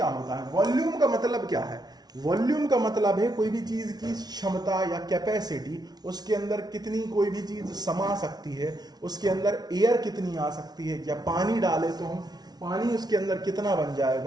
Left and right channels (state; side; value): late; left; 0.19 ms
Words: होता है, वॉल्यूम का मतलब क्या है। वॉल्यूम का मतलब है कोई भी चीज की क्षमता या कैपेसिटी, उसके अंदर कितनी कोई भी चीज समा सकती है, उसके अंदर एयर कितनी आ सकती है, या पानी डाले तो हम पानी उसके अंदर कितना बन